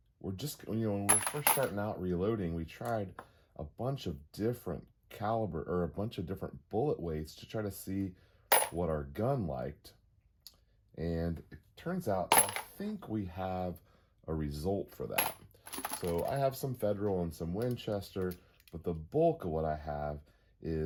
just, when we were first starting out reloading, we tried a bunch of different caliber or a bunch of different bullet weights to try to see what our gun liked. And it turns out I think we have a result for that. So I have some Federal and some Winchester, but the bulk of what I have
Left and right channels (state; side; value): identical; both; correlation 1.00